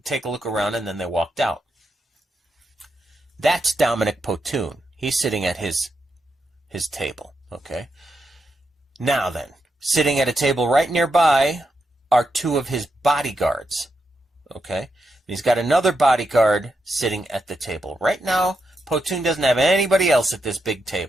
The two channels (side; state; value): both; normal; correlation 0.84